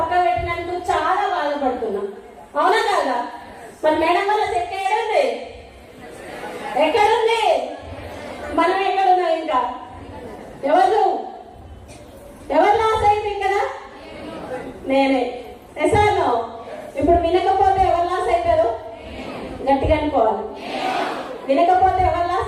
పెట్టినందుకు చాలా బాధపడుతున్నా. అవునా కాదా? మరి మేడం వల్ల చెక్ ఎక్కడుంది? మనం ఎక్కడున్నాం? ఇంకా ఎవరు లాస్ అయింది కదా? నేనే. ఎసాను. ఇప్పుడు వినకపోతే ఎవరు లాస్ అవుతారు? గట్టిగా అనుకోవాలి. వినకపోతే ఎవరు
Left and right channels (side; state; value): both; identical; correlation 1.00